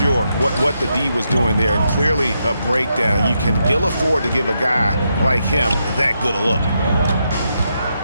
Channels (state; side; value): inverted; both; correlation -0.82